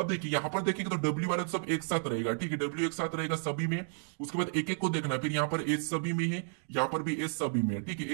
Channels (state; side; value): silent; left; digital silence